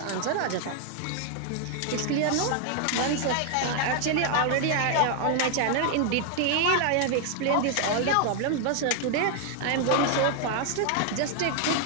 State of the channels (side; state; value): both; different; correlation 0.00